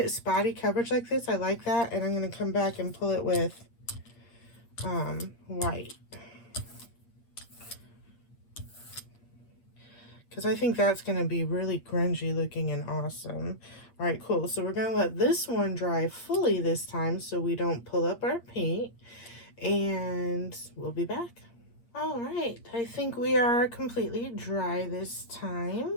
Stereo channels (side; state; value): right; late; 8.5 ms